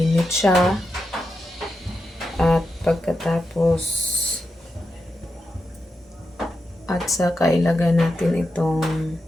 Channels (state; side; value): normal; both; correlation 0.88